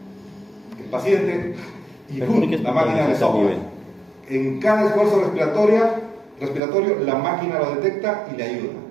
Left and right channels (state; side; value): drops out; left; at 6.6 s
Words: El paciente y la máquina le sopla. En cada esfuerzo respiratorio, la máquina lo detecta y le ayuda,